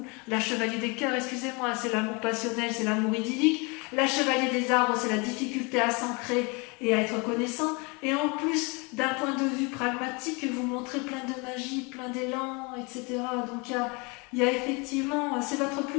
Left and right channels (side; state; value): right; quieter; 29.5 dB